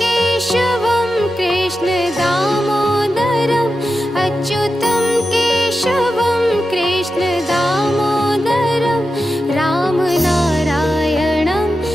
केशवं कृष्ण दामोदरम्, अच्युतं केशवं कृष्ण दामोदरं रामनारायणं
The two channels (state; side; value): normal; both; correlation 0.91